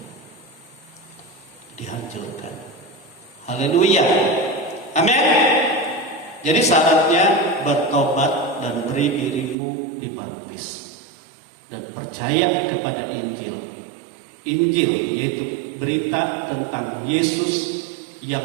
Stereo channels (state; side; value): drops out; left; at 9.6 s